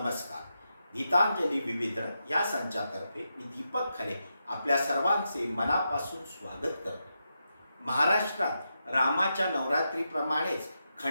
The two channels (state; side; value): inverted; both; correlation -0.86